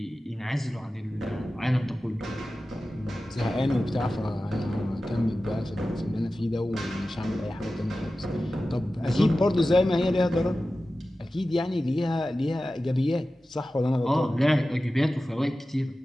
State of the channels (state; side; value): normal; both; correlation 0.95